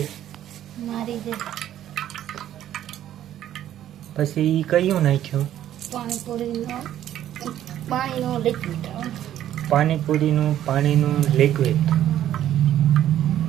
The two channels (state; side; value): quieter; left; 11.7 dB